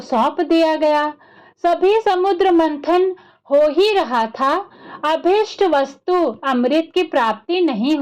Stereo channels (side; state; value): both; identical; correlation 1.00